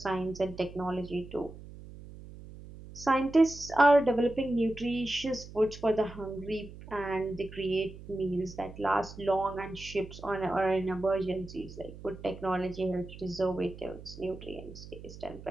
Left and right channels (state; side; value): noise; right; hum, 15 dB below the sound